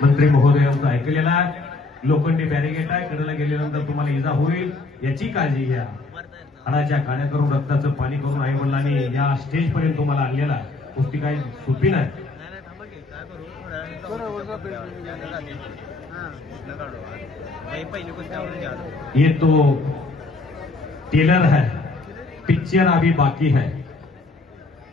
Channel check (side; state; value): right; quieter; 3.4 dB